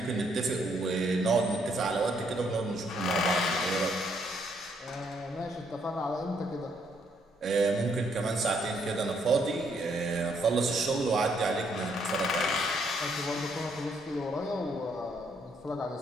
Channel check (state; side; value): normal; both; correlation 0.71